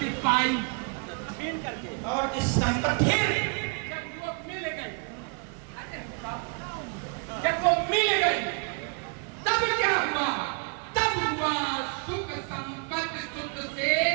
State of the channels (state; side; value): quieter; left; 37.6 dB